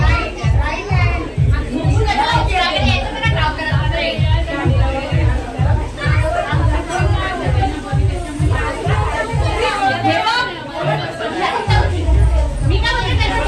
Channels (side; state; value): both; identical; correlation 1.00